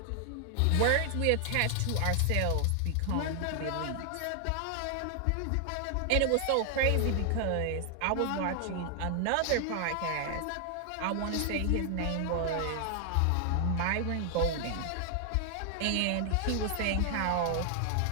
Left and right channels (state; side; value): different; both; correlation 0.00